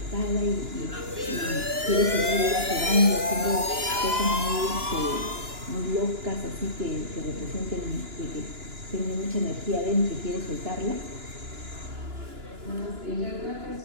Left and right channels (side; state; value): left; late; 2.9 ms